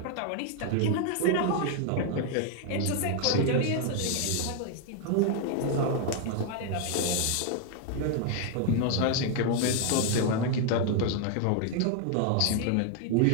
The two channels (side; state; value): both; different; correlation 0.00